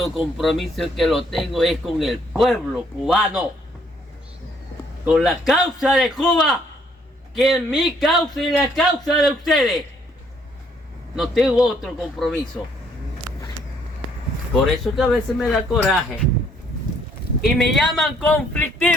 compromiso que lo tengo es con el pueblo cubano, con la causa de Cuba, que es mi causa y la causa de ustedes. No tengo otro compromiso. Por eso que a veces me da coraje y me llaman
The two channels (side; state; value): both; normal; correlation 0.66